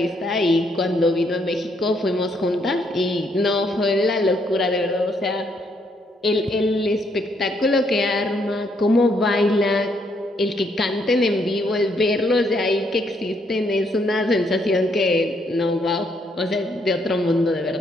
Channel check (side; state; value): both; normal; correlation 0.73